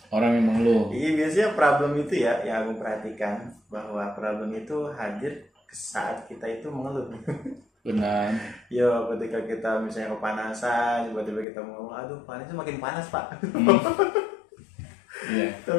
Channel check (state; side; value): drops out; right; at 11.5 s